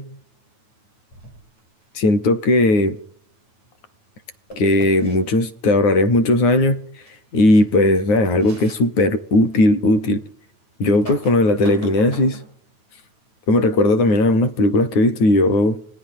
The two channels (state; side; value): late; right; 9.3 ms